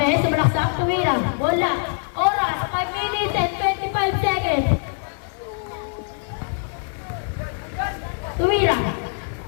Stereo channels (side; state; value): right; silent; 61 dB below the other